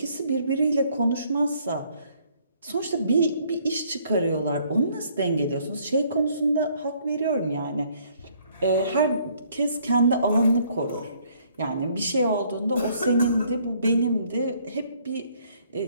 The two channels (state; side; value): inverted; both; correlation -0.64